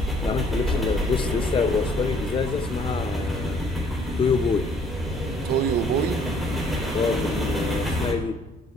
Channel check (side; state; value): both; normal; correlation 0.61